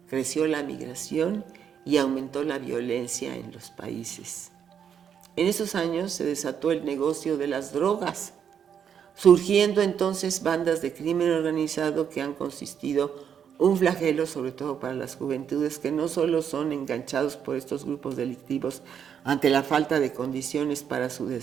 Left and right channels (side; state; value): left; quieter; 8.1 dB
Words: Creció la migración y aumentó la violencia en los países. En esos años se desató el negocio de las drogas, surgiendo entonces bandas de crimen organizado que han consistido un flagelo sobre todo para las juventudes que no solo son enganchados por estos grupos delictivos ante la falta de condiciones para su